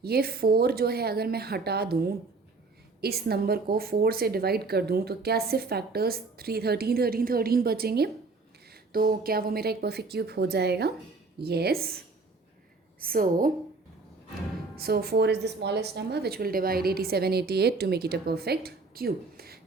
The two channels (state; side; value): quieter; left; 3.8 dB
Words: ये 4 जो है अगर मैं हटा दूँ, इस नंबर को 4 से डिवाइड कर दूँ, तो क्या सिर्फ फैक्टर्स 13 बचेंगे. तो क्या वो मेरा एक परफेक्ट क्यूब हो जाएगा. Yes. So 4 is the smallest number which will divide 87 88 to make it a perfect cube.